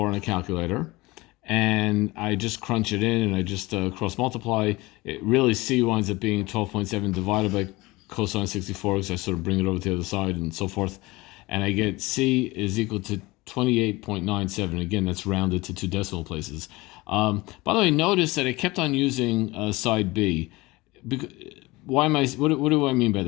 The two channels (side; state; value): right; quieter; 21.6 dB